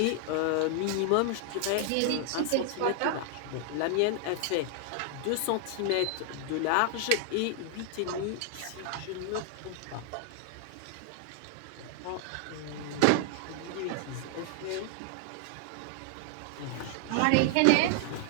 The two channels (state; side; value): different; both; correlation 0.00